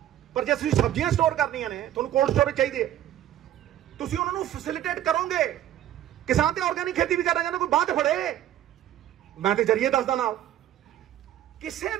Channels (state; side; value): quieter; left; 12.0 dB